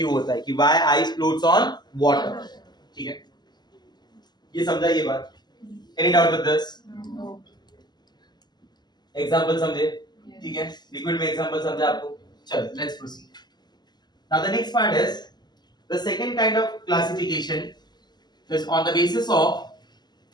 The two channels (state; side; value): late; right; 0.21 ms